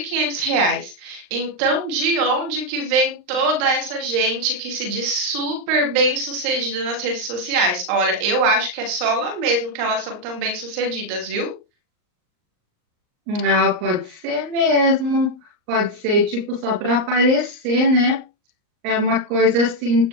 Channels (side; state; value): left; late; 38 ms